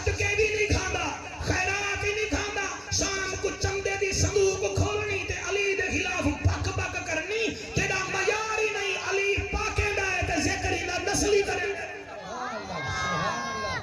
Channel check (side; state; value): both; identical; correlation 1.00